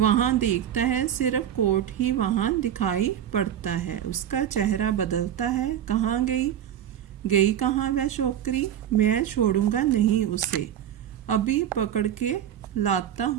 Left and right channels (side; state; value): left; quieter; 10.4 dB